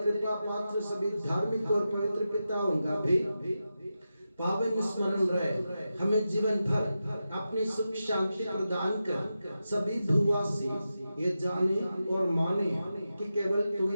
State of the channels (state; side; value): inverted; both; correlation -0.90